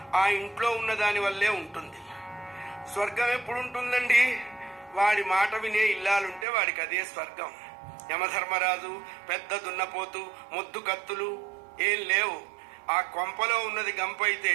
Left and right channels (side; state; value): left; drops out; at 6.5 s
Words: ఆ ఇంట్లో ఉన్న దాని వల్లే ఉంటుంది. స్వర్గం ఎప్పుడు ఉంటుందండి? వాడి మాట వినే ఇల్లాలుంటే వాడికి అదే స్వర్గం. యమధర్మరాజు, పెద్ద దున్నపోతు, ముద్దు కత్తులు ఏం లేవు. ఆ కొంపలో ఉన్నది గంప అయితే